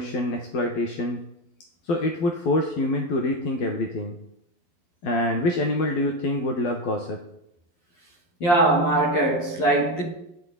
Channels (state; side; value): late; right; 12 ms